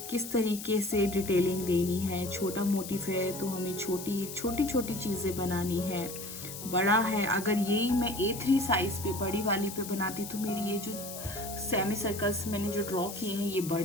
किस तरीके से डिटेलिंग देनी है। छोटा मोटिव है तो हमें छोटी छोटी चीज़ें बनानी है। बड़ा है, अगर यही मैं A3 साइज़ पे बड़ी वाली पे बनाती तो मेरी ये जो सेमी सर्कल्स मैंने जो ड्रॉ किए हैं ये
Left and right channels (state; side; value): noise; left; hiss, 10 dB below the sound